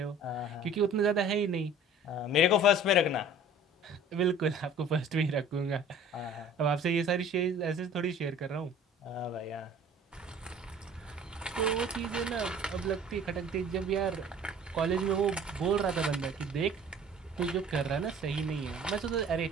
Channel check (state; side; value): normal; both; correlation 0.48